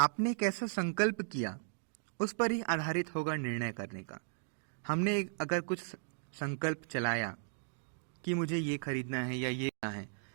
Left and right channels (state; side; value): silent; left; digital silence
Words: कैसा संकल्प किया उस पर ही आधारित होगा निर्णय करने का। हमने अगर कुछ संकल्प चलाया कि मुझे ये खरीदना है या ये लेना है,